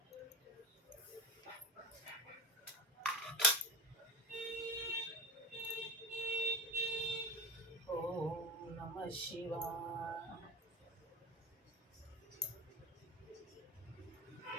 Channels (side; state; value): both; normal; correlation 0.25